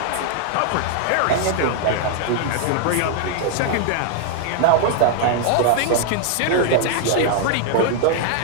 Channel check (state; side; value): different; both; correlation -0.01